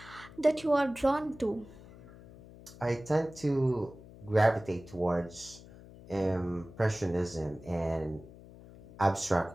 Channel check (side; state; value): left; noise; hum, 19 dB below the sound